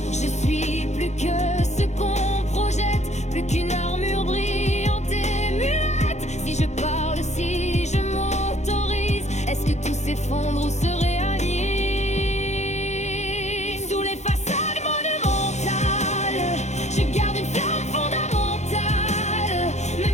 Je suis plus que ce qu'on projette, plus qu'une armure brillante et muette. Si je parle, si je m'autorise, est-ce que tout s'effondre ou se réalise? Sous les façades monumentales, je garde une flamme fondamentale.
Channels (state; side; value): late; right; 0.33 ms